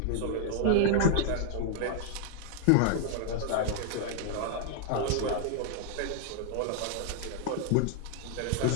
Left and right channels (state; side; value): different; both; correlation -0.01